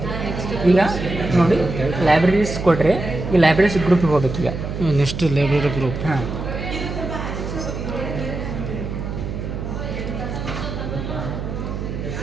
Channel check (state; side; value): noise; right; hum, 6 dB below the sound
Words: ಈಗ ನೋಡಿ ಲೈಬ್ರರೀಸ್ ಕೊಟ್ಟರೆ ಈ ಲೈಬ್ರರೀಸ್ ಗ್ರೂಪಿಗೆ ಹೋಗ್ಬೇಕು. ಈಗ ನೆಕ್ಸ್ಟ್ ಲೈಬ್ರರಿ ಗ್ರೂಪ್. ಹಾಂ,